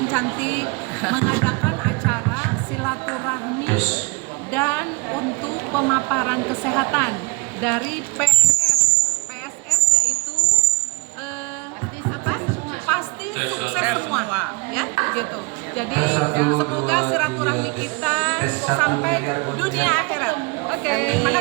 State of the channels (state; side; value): quieter; left; 28.7 dB